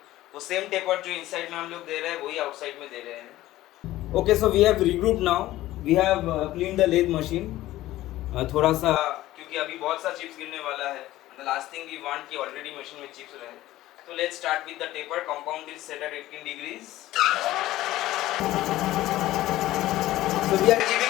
वो सेम टेपर जो इनसाइड में हम लोग दे रहे हैं वही आउटसाइड में दे रहे हैं. Okay, so we have regroup now. We have clean the lathe machine. थोड़ा सा क्योंकि अभी बहुत सा चिप्स गिरने वाला है. The last thing we want कि ऑलरेडी मशीन में चिप्स रहे. So let's start with the taper. Compound is set at 18 degrees. So we are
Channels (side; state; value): right; quieter; 15.7 dB